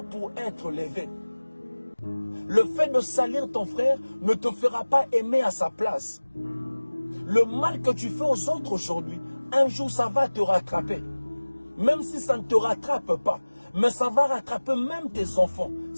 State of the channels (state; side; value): inverted; both; correlation -1.00